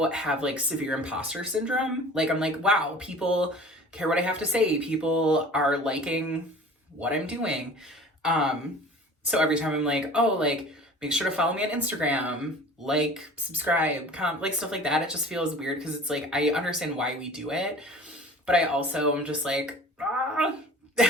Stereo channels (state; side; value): normal; both; correlation 0.43